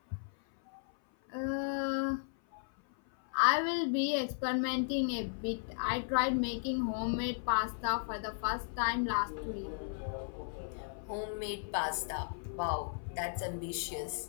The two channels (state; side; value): silent; right; 54 dB below the other